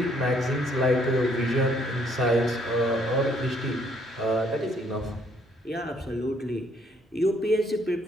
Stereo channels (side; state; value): both; normal; correlation 0.66